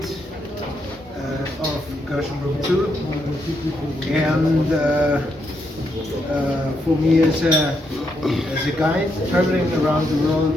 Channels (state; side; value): normal; both; correlation 0.79